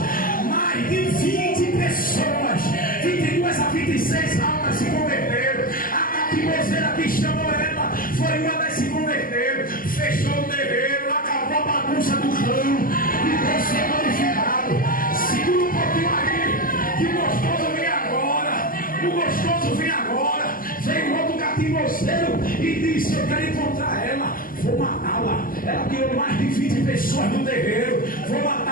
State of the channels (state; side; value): late; right; 0.41 ms